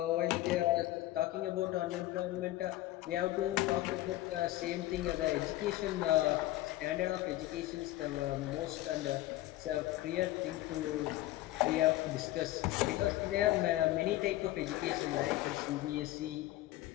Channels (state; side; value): quieter; right; 16.1 dB